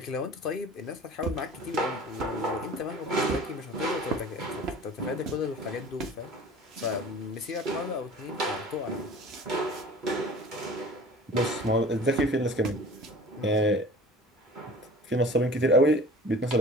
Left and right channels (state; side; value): normal; both; correlation 0.43